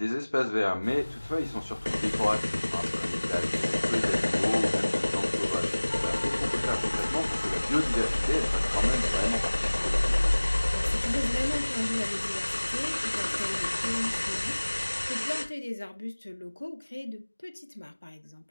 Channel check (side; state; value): both; inverted; correlation -1.00